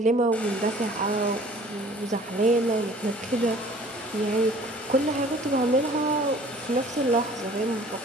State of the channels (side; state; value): both; normal; correlation 0.51